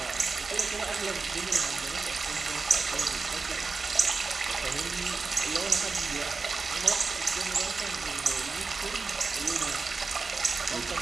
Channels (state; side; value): quieter; left; 4.4 dB